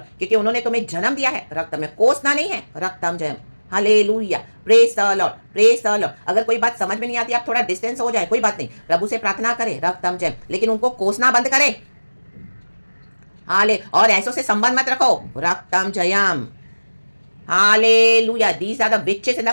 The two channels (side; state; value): both; inverted; correlation -1.00